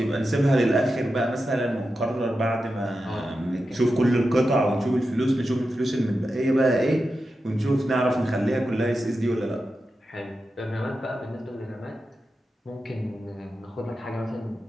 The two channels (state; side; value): normal; both; correlation 0.90